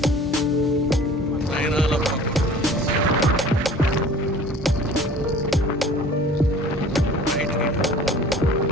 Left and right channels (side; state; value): both; normal; correlation 0.46